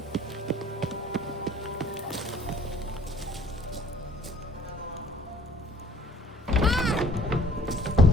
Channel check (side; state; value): both; normal; correlation 0.54